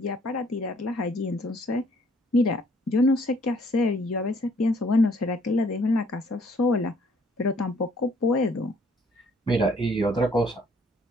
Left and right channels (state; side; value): normal; both; correlation 0.62